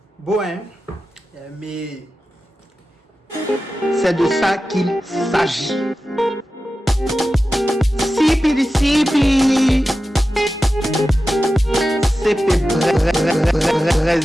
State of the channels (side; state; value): both; normal; correlation 0.93